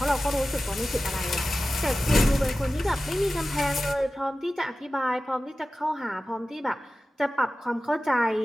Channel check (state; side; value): normal; both; correlation 0.95